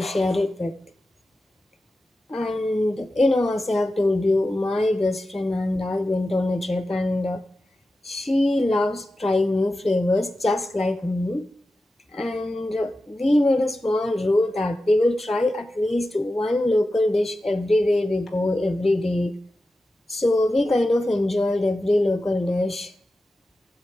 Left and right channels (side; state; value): both; normal; correlation 0.93